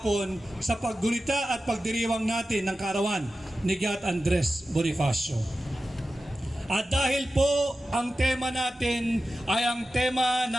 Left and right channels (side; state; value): both; normal; correlation 0.93